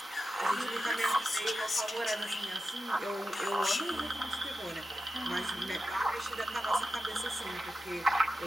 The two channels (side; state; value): both; normal; correlation 0.90